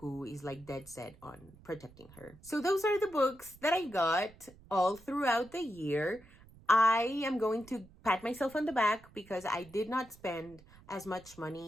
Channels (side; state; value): right; noise; rumble, 24 dB below the sound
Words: is like dead set on protecting her. So those are the books that I got all throughout the year. I am going to pat myself on the back because I did not spend as much